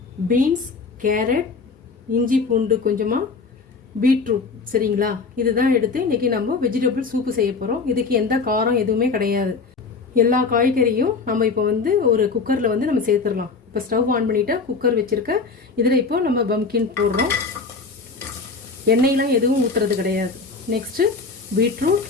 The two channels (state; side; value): quieter; right; 4.5 dB